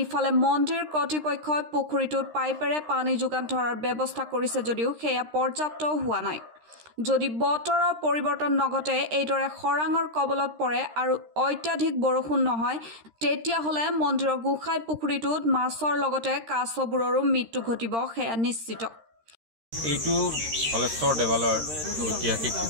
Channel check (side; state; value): left; late; 13 ms